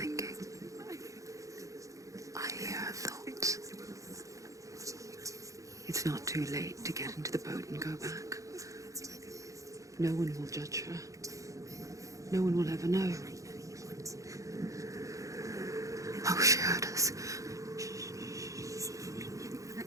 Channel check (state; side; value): late; left; 0.16 ms